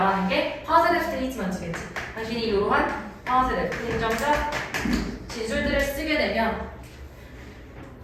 게 positive statements겠지. 당신이 이러한 positive, 긍정적 진술들을 쓰게 되면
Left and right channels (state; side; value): identical; both; correlation 1.00